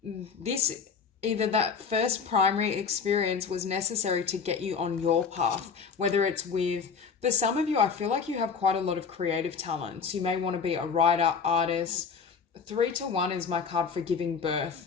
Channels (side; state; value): right; quieter; 5.9 dB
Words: this, either that first primary experience was necessary to get you on your path, whether it's with, for some of you, I feel like you have quite a lot of creative talents. You may want to be a writer, artist. 3 to 1 is my card for giving